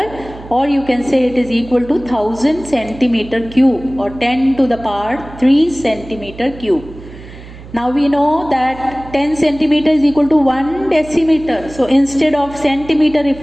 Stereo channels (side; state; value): right; noise; hum, 17 dB below the sound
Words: or you can say it is equal to 1000 centimeter cube, or 10 to the power 3 centimeter cube. Now we know that 10 centimeter is equal to 1 decimeter. So instead of centimeter, if